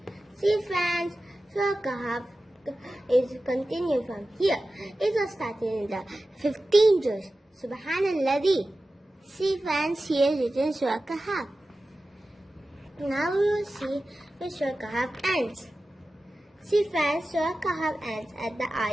See, friends, Surah Kahf is continued from here. It was started in the 15 juz. Subhanallah. See, friends, here is written Surah Kahf. Now we will see where Surah Kahf ends. See, friends, Surah Kahf ends at the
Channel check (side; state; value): both; normal; correlation 0.95